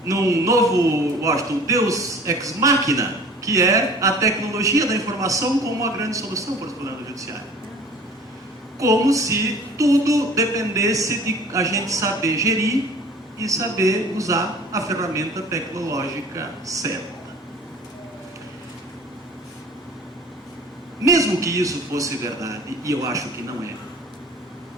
novo, Washington, Deus ex machina, que é a tecnologia da informação como a grande solução para os problemas do judiciário. Como se tudo dependesse de a gente saber gerir e saber usar a ferramenta tecnológica certa. Mesmo que isso fosse verdade, e eu acho que não é,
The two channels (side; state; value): both; normal; correlation 0.46